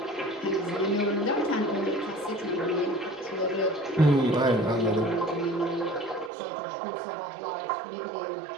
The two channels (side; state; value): left; drops out; at 6.3 s